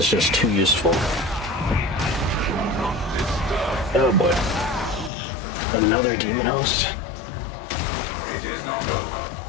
just too useful. Oh boy. Another demon host?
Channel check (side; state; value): right; drops out; at 5.1 s